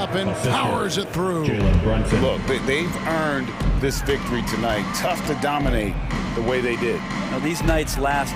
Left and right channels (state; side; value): identical; both; correlation 1.00